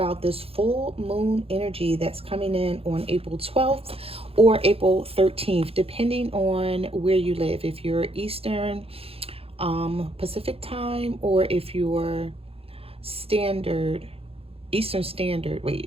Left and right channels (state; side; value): late; left; 0.28 ms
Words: this full moon energy that's coming in on April 12th or April 13th, depending on where you live. If you're Eastern Pacific time, or if you're Eastern Standard,